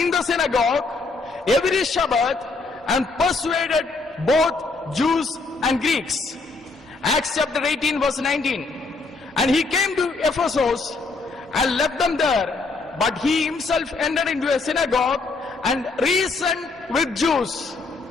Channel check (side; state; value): right; quieter; 3.8 dB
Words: the synagogue every Sabbath and persuaded both Jews and Greeks. Acts chapter 18 verse 19. And he came to Ephesus and left them there, but he himself entered into a synagogue and reasoned with Jews.